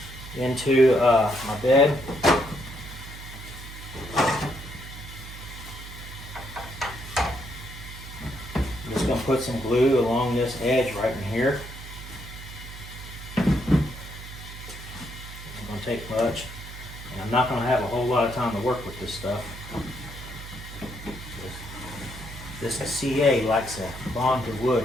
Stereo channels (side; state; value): right; noise; hum, 13 dB below the sound